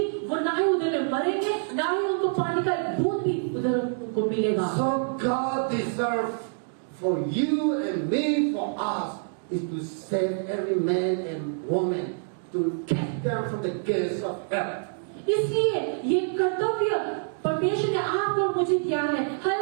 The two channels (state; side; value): silent; left; digital silence